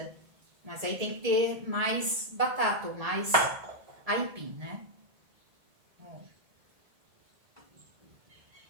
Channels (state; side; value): late; left; 1.7 ms